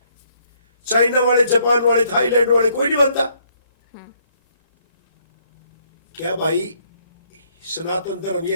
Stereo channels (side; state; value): both; inverted; correlation -0.69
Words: चाइना वाले, जापान वाले, थाईलैंड वाले, कोई नहीं मानता। क्या भाई सनातन धर्म